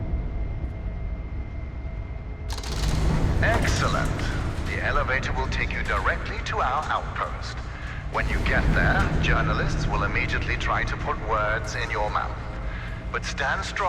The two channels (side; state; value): both; identical; correlation 1.00